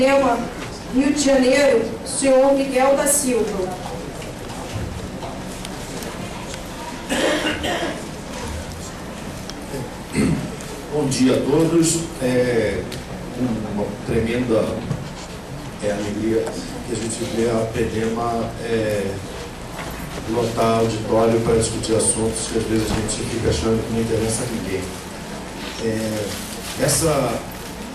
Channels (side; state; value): both; identical; correlation 1.00